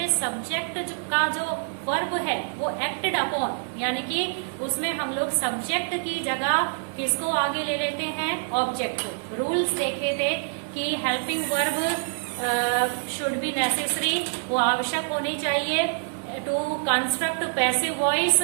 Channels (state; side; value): silent; left; 61 dB below the other